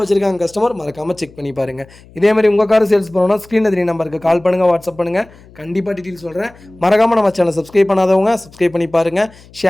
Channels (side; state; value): left; noise; hum, 24 dB below the sound